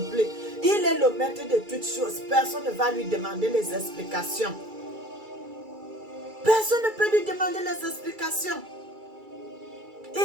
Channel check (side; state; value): left; late; 2.3 ms